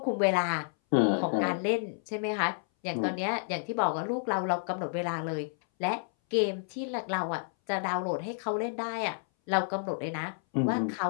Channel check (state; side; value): silent; right; 58 dB below the other